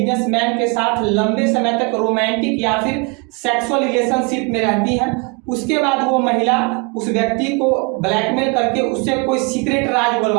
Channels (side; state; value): left; quieter; 31.6 dB